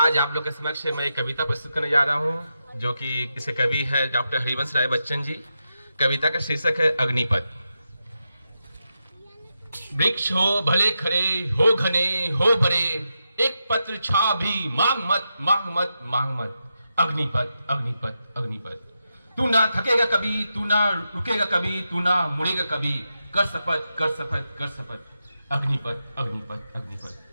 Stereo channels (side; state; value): both; inverted; correlation -0.87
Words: आज आप लोग के समक्ष मैं एक कविता प्रस्तुत करने जा रहा हूं, जो कि किसी कवि है डॉक्टर हरिवंश राय बच्चन जी। कविता का शीर्षक है अग्निपथ। वृक्ष हो भले खड़े, हो घने हो बड़े, एक पत्र छा भी मांग मत मांग मत मांग मत। अग्निपथ अग्निपथ अग्निपथ। तू ना थकेगा कभी, तू ना रुकेगा कभी, तू ना मुड़ेगा कभी, कर शपथ कर शपथ कर शपथ। अग्निपथ अग्निपथ